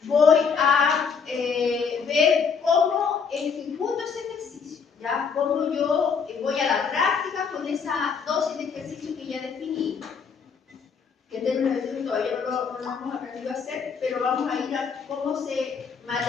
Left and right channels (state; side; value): quieter; right; 6.0 dB